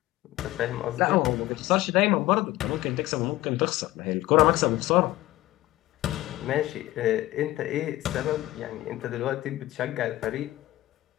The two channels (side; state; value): right; quieter; 16.7 dB